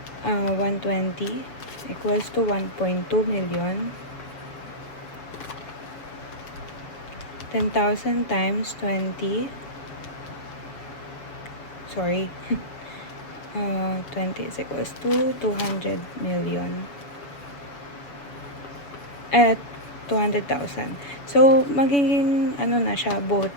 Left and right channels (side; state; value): right; late; 7.0 ms